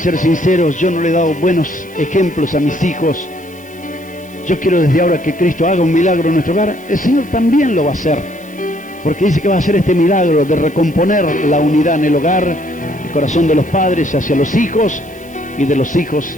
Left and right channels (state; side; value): noise; right; hiss, 25 dB below the sound